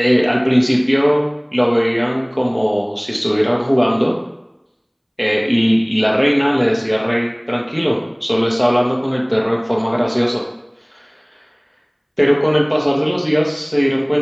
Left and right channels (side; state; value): both; identical; correlation 1.00